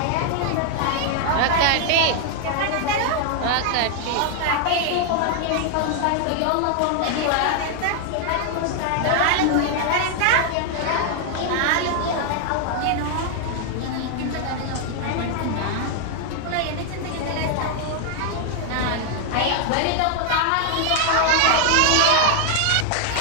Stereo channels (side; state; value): both; different; correlation 0.00